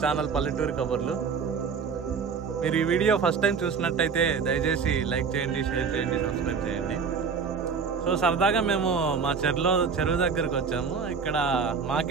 channel పల్లెటూరు కబుర్లు. మీరు ఈ వీడియో ఫస్ట్ టైం చూసినట్టయితే దయచేసి లైక్ చేయండి, షేర్ చేయండి, సబ్స్క్రైబ్ చేయండి. సో సరదాగా మేము మా చెరువు దగ్గరికి వచ్చాము. ఇక్కడ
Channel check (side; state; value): left; quieter; 5.7 dB